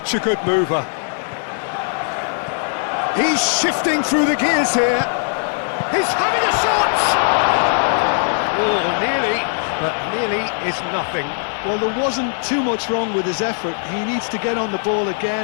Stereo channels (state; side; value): silent; right; digital silence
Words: a good mover. He's shifting through the gears here. He's having a shot! Oh, nearly, but nearly is nothing. Well, there wasn't too much wrong with his effort. He needs to get on the ball